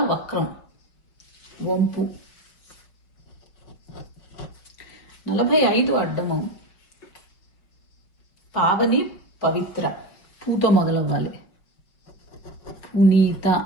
వక్రం వంపు. 45 అడ్డము పావని పవిత్ర. పూతో మొదలవ్వాలి. పునీత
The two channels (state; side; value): late; right; 5.2 ms